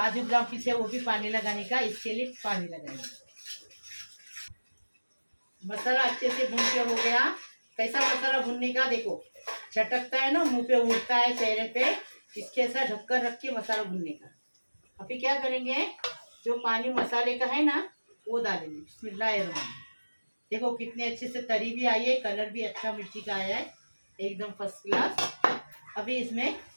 बादाम पीसे वो भी पानी लगाने का, इसके लिए पानी लगाएंगे। मसाला अच्छे से भून के हो गया। कैसा मसाला भूनने का, देखो चटकता है ना, मुंह पे उड़ता है, चेहरे पे, इसके ऐसा ढक्कन रख के मसाला भूनने का। अभी क्या करेंगे, जो पानी मसाले का है ना, वो डालेंगे। बिस्मिल्लाहिर्रहमानिर्रहीम। देखो कितने अच्छे से तरी भी आई है, कलर भी अच्छा मिर्ची का आया है, एकदम फर्स्ट क्लास। अभी इसमें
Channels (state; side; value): inverted; both; correlation -1.00